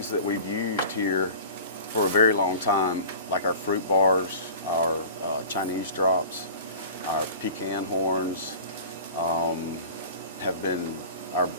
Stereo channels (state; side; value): inverted; both; correlation -0.39